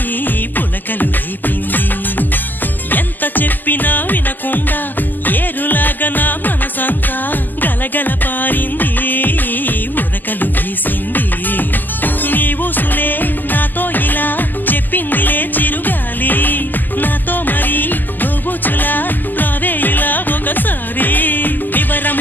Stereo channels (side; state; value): right; late; 0.087 ms